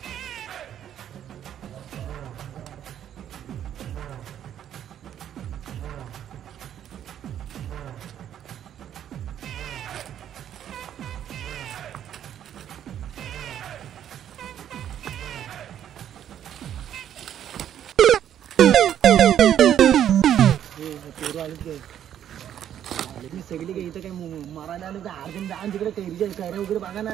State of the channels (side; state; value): left; quieter; 10.2 dB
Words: सगळी काही इथं काय मारायला आलं तर अर्जन जाण तिकडे कैरीच्या कैऱ्या वगैरे बघा ना.